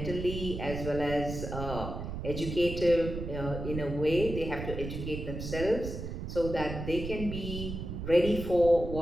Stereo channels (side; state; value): right; noise; rumble, 6 dB below the sound